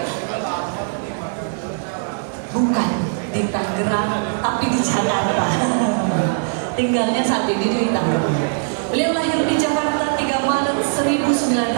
bukan di Tangerang, tapi di Jakarta. Tinggalnya saat ini di Tangerang. Beliau lahir di Jakarta 3 Maret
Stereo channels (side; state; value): left; silent; digital silence